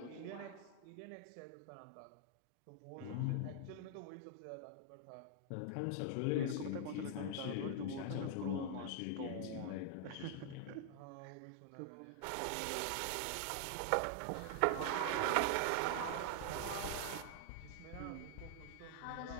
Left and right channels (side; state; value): both; different; correlation -0.01